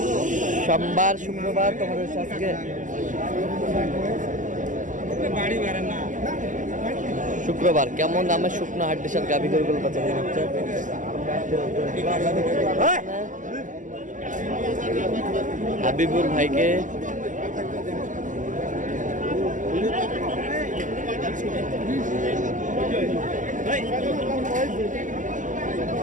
সোমবার শুক্রবার। তোমাদের আজকে শুক্রবার। কেমন দামে শুকনো হাড্ডির সাথে গাভী গরুগুলো বাচ্চা হচ্ছে হাবিবুর ভাইকে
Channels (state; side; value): late; left; 0.37 ms